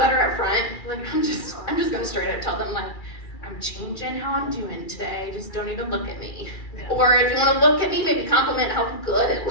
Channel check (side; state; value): right; late; 2.4 ms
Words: up front, like I'm just gonna straight up tell them like, I'm changing how I'm doing today. Just don't even look at me. Or if you want to look at me, maybe compliment how good it